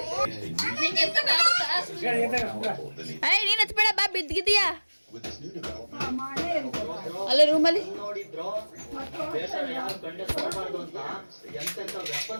ನೀನ್ ಹಚ್ಬೇಡ ಬಾ ಬಿದ್ದಿದೀಯಾ ಅಲ್ಲೇ ರೂಮಲ್ಲಿ ನೋಡಿದ್ರು ಎಂತೆಂತ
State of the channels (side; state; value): both; inverted; correlation -1.00